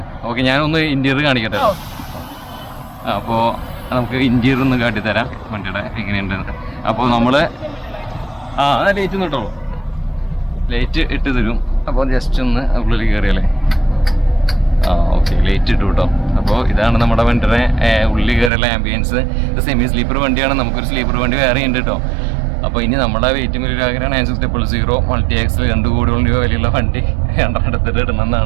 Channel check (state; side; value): drops out; left; at 18.5 s